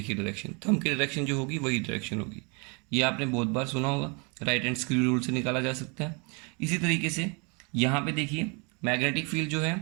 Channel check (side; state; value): left; quieter; 32.8 dB